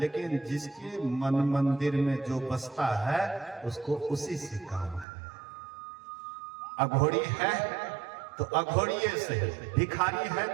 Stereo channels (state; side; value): drops out; left; at 5.1 s